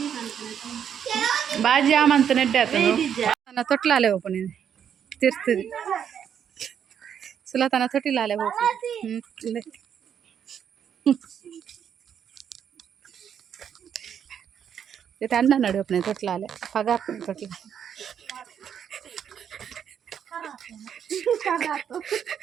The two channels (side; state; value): left; quieter; 8.5 dB